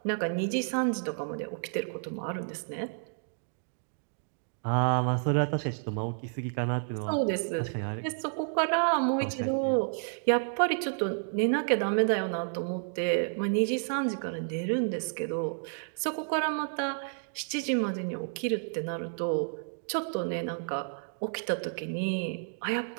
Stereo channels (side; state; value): left; silent; digital silence